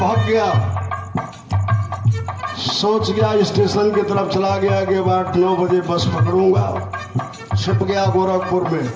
गया, सोच गया स्टेशन की तरफ चला गया कि 8-9 बजे बस पकड़ूंगा। छिप गया गोरखपुर में।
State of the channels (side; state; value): both; identical; correlation 1.00